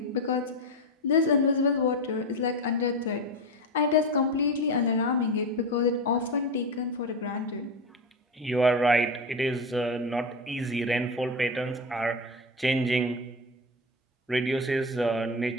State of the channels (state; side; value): normal; both; correlation 0.20